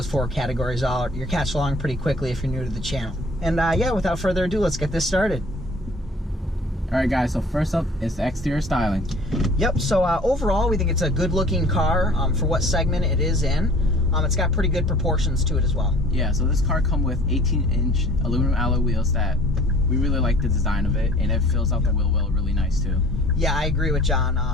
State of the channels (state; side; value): normal; both; correlation 0.50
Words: 4 categories are. You'll catch along pretty quickly if you're new to the channel. And yeah, without further ado, let's get this started. Alright guys, so first up is the exterior styling. Yep, so overall we think it's a good looking car for what segment it is in. It's got pretty good proportions to it as well. Yeah, so this car comes with 18-inch aluminum alloy wheels that we really like the design of it, and it fills out the wheel well really nice too. Yeah, I agree with John.